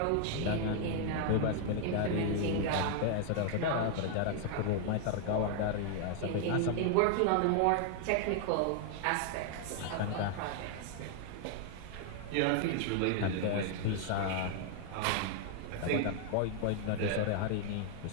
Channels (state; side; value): different; both; correlation 0.00